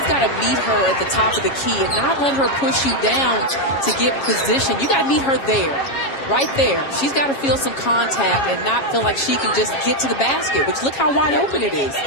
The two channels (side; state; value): right; late; 7.3 ms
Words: got to meet her at the top of the key and not let her push you down to get position. You got to meet her there. Right there. She's got to feel some contact and not feel like she can just get to the basket, which look how wide open it is.